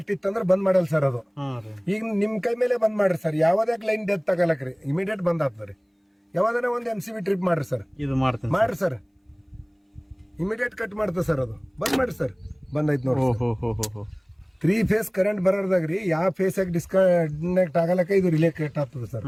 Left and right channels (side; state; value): both; identical; correlation 1.00